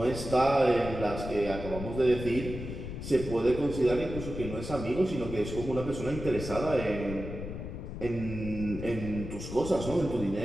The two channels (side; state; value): left; noise; rumble, 8 dB below the sound